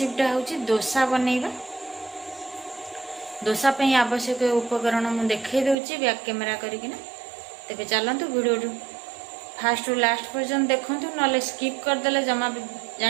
हूँ डोसा बनैबा। डोसा पे आवश्यक उपकरण मुझे देखई दूची बैक कैमेरा करकिना। तेरे चलतु वीडियो फास्ट रु लास्ट पर्यंत देखूँ ना स्किप करदे जमा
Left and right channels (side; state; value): left; drops out; at 5.8 s